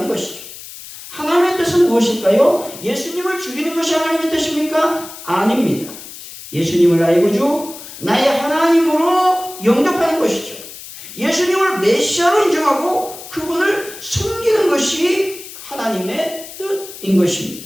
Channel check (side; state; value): left; noise; hiss, 14 dB below the sound